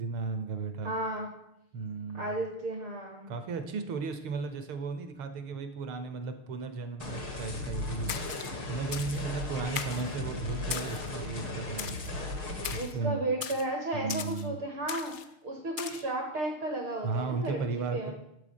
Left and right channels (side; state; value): left; late; 6.6 ms